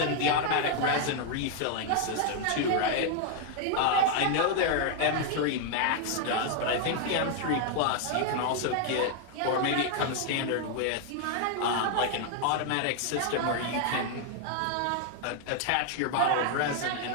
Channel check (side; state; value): both; different; correlation 0.00